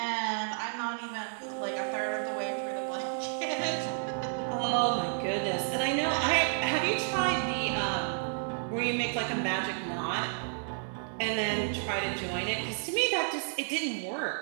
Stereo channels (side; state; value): left; silent; digital silence